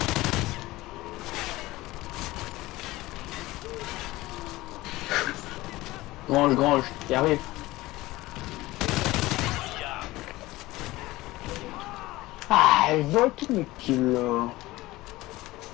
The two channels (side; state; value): right; quieter; 18.8 dB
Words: Grange, y arrive. Ah, elle vole tout le kill là.